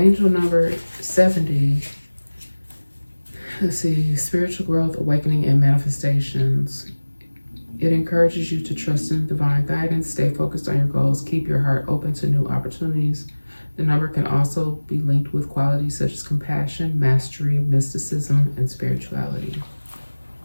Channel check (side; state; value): both; inverted; correlation -1.00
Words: number 70. Let's see, spiritual growth, awakening, and manifestations. It encourages you to trust in divine guidance, stay focused on your goals, keep your heart open to new opportunities. The number can also be linked with qualities such as compassion, mastery, mysticism, and spirituality.